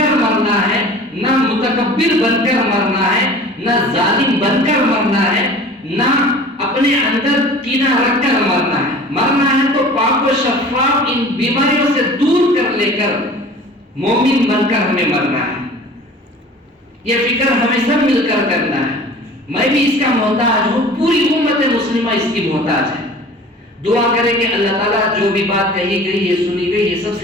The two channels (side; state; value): both; normal; correlation 0.43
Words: مرنا ہے، نہ متکبر بن کر مرنا ہے، نہ ظالم بن کر مرنا ہے، نہ اپنے اندر کینہ رکھ کر مرنا ہے. مرنا ہے تو پاک و شفاف ان بیماریوں سے دور کر لے کر مومن بن کر ہمیں مرنا ہے. یہ فکر ہمیں سب مل کر کرنا ہے. میں بھی اس کا محتاج ہوں، پوری امت مسلمہ اس کی محتاج ہے. دعا کریں کہ اللہ تعالیٰ جو بھی بات کہی گئی ہے، سنی گئی ہے، سب